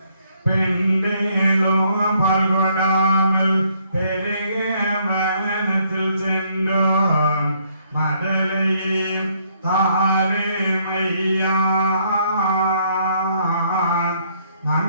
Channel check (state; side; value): inverted; both; correlation -0.68